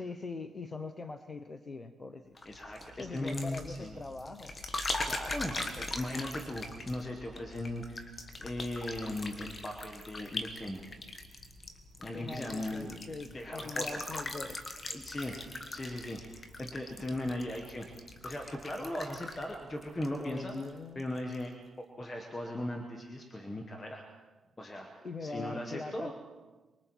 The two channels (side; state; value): both; normal; correlation 0.89